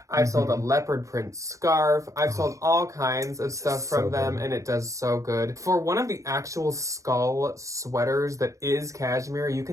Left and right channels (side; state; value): left; late; 0.15 ms